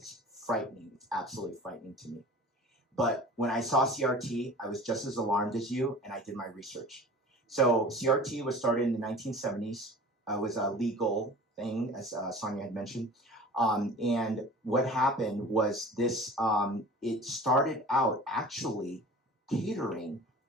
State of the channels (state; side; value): normal; both; correlation 0.41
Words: frightening. It's absolutely frightening to me. But when I saw CRT, I was just as alarmed as you, and I did my research. So CRT was started in the 1970s. It was a legal thing, as Sonia had mentioned. And what happened was this, it started out actually catering